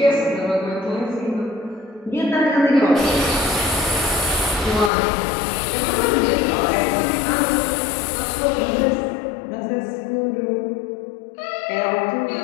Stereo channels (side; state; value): right; drops out; at 4.9 s